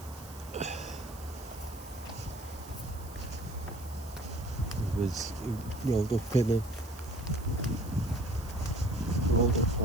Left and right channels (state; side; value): noise; right; hiss, 18 dB below the sound